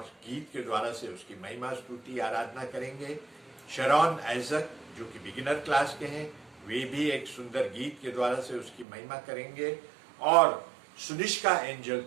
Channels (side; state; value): left; drops out; at 8.8 s